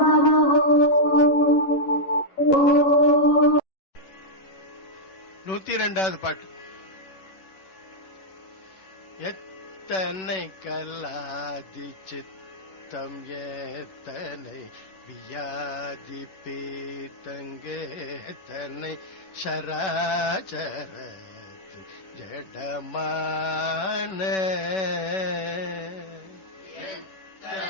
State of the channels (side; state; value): right; late; 11 ms